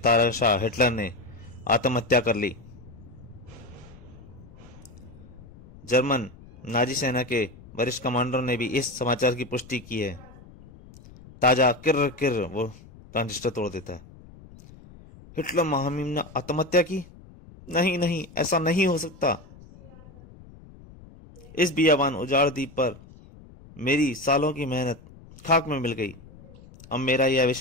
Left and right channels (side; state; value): left; noise; rumble, 21 dB below the sound